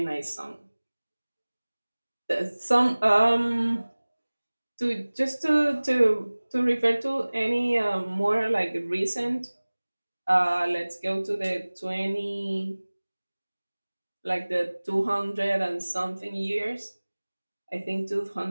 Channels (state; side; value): inverted; both; correlation -1.00